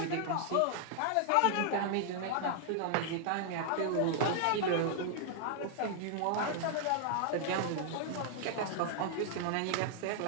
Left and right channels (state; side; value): different; both; correlation 0.00